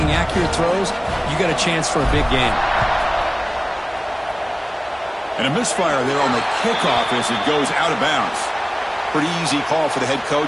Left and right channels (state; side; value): identical; both; correlation 1.00